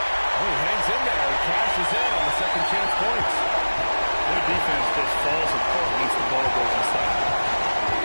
he hangs in there. He cashes in on the second chance points. Their defense just falls apart once the ball goes inside.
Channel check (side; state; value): both; inverted; correlation -1.00